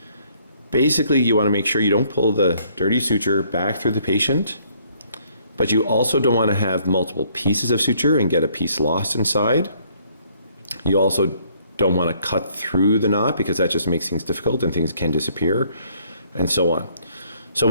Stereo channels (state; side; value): inverted; both; correlation -0.64